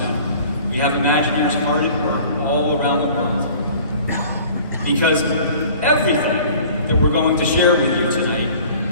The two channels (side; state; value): both; inverted; correlation -0.48